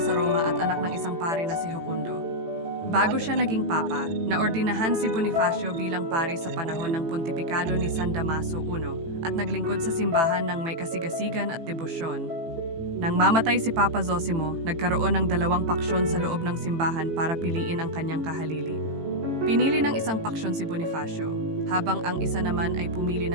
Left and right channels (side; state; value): left; late; 18 ms